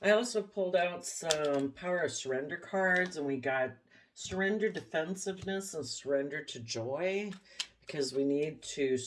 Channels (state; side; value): identical; both; correlation 1.00